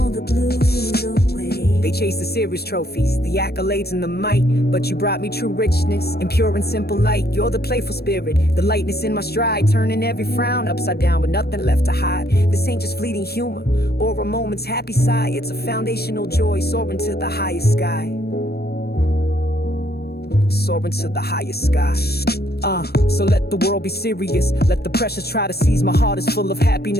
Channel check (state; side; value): late; right; 0.46 ms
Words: the blues away. They chase the serious trophies, the accolades and the might, but you brought me true richness and pure and simple light. You're the playful spirit, the lightness in my stride, turning every frown upside down with nothing left to hide. This ain't just fleeting humor or a moment's happy sigh, it's a foundational joy soaring to the highest sky. Soaring to the highest sky. So let the world be serious. Let the pressures try to seize. My heart is full of